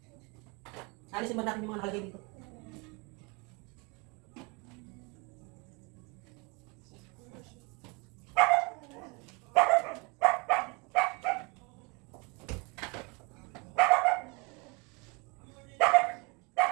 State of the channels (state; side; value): quieter; left; 30.0 dB